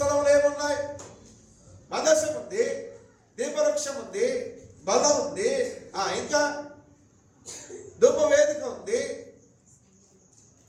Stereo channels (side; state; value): both; identical; correlation 1.00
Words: ఏమున్నాయి? మందసం ఉంది, దీపవృక్షం ఉంది, బలం ఉంది, ఇంకా ధూపవేదిక ఉంది.